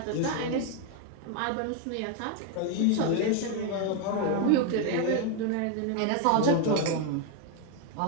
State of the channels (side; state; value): both; different; correlation 0.01